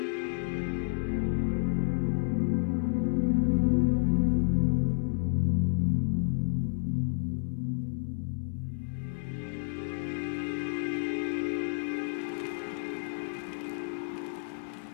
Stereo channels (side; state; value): right; silent; digital silence